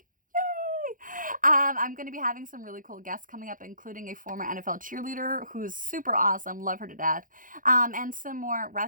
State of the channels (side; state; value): left; late; 0.39 ms